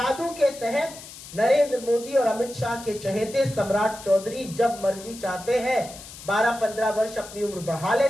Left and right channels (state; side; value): noise; left; hiss, 15 dB below the sound